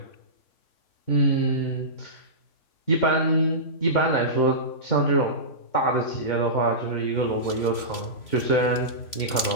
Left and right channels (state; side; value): late; right; 3.0 ms